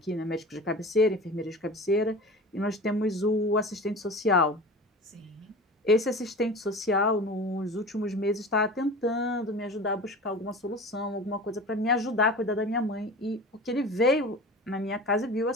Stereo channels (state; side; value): normal; both; correlation 0.35